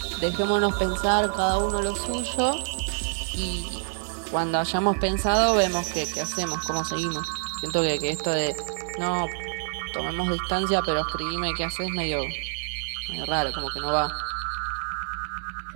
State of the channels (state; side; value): silent; left; 60 dB below the other